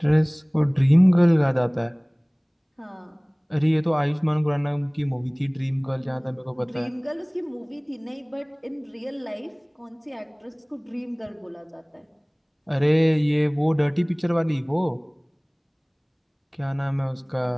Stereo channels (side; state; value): both; identical; correlation 1.00